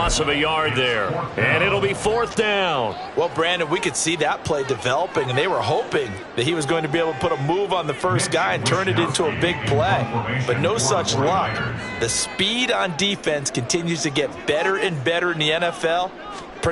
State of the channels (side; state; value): both; identical; correlation 1.00